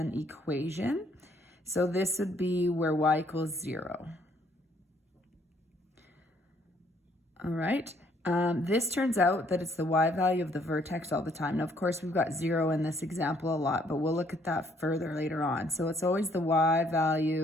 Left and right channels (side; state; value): both; normal; correlation 0.65